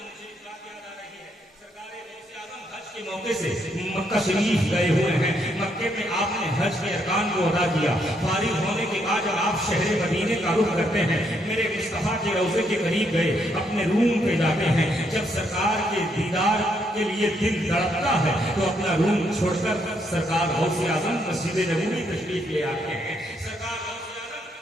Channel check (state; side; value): normal; both; correlation 0.74